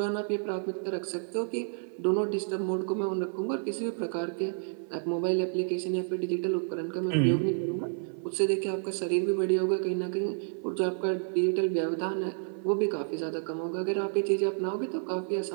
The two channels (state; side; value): silent; left; 57 dB below the other